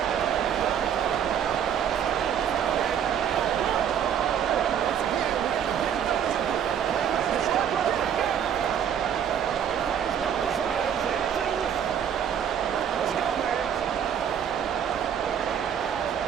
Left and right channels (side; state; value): left; quieter; 8.7 dB